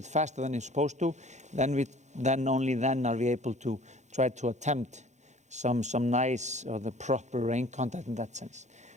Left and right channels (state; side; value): late; left; 0.34 ms